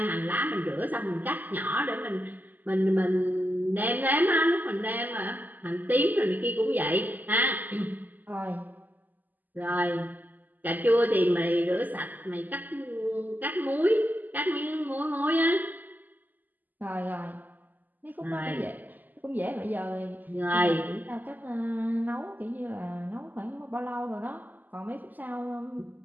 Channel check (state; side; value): late; left; 0.084 ms